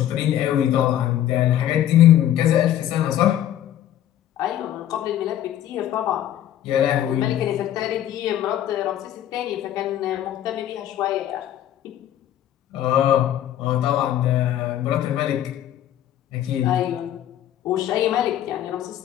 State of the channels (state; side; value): quieter; right; 11.7 dB